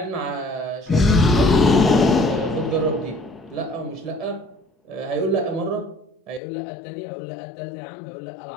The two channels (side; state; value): right; drops out; at 6.4 s